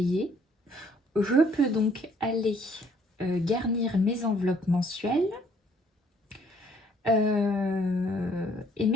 je peux donc aller garnir mes enveloppes mensuelles. Et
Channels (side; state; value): both; normal; correlation 0.63